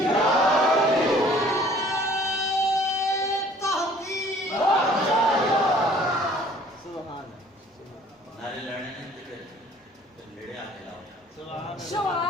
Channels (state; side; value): normal; both; correlation 0.54